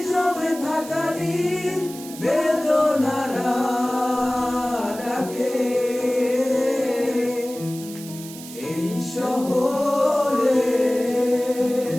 জমে থাকা নীল বেদনারা ডাকে। এই শহরে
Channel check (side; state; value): right; noise; hiss, 15 dB below the sound